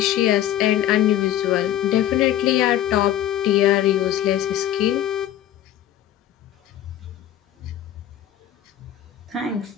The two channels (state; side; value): quieter; right; 11.9 dB